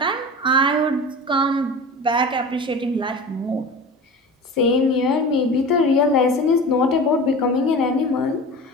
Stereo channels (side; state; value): both; normal; correlation 0.34